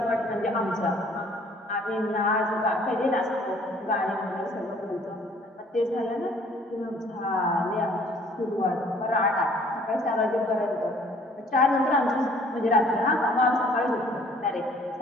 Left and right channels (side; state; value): both; normal; correlation 0.57